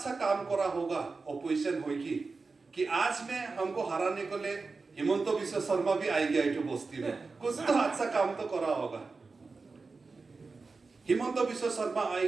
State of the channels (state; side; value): quieter; left; 4.1 dB